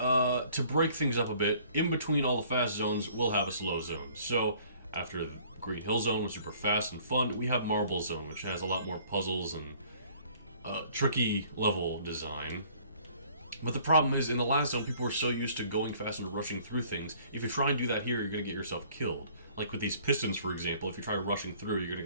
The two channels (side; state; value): both; inverted; correlation -0.56